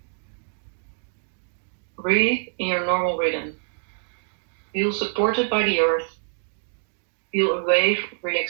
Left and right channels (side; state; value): left; silent; digital silence